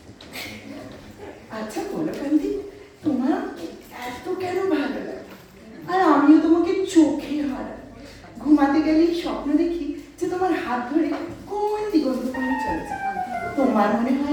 আচ্ছা বলো কান্তি, তোমার এত কেন ভালো লাগে? আর আমিও তোমাকে চোখে হারাই। ঘুমাতে গেলেই স্বপ্ন দেখি যে তোমার হাত ধরে কোন দিগন্ত পানে চলেছে। তোমার মনে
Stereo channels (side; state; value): both; identical; correlation 1.00